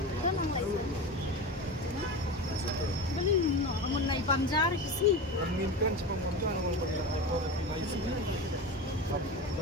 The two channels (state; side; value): normal; both; correlation 0.25